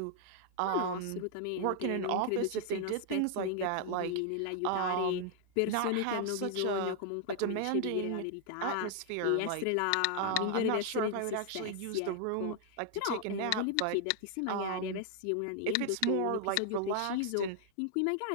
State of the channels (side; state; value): both; different; correlation 0.00